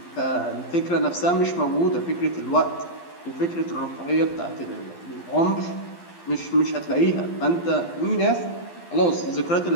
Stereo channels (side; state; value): right; late; 12 ms